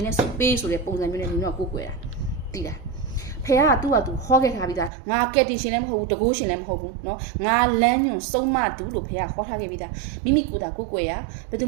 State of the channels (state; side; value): drops out; left; at 4.9 s